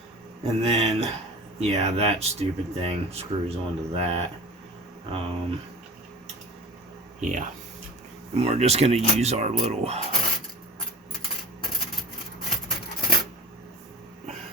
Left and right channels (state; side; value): normal; both; correlation 0.38